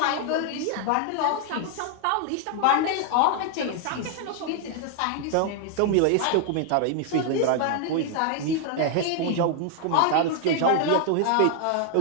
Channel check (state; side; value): different; both; correlation 0.00